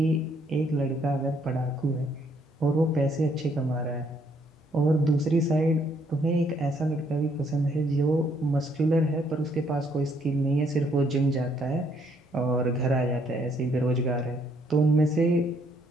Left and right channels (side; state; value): both; normal; correlation 0.68